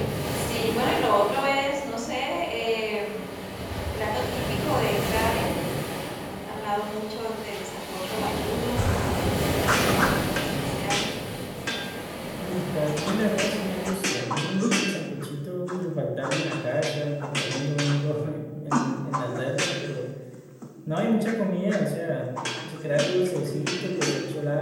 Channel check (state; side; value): identical; both; correlation 1.00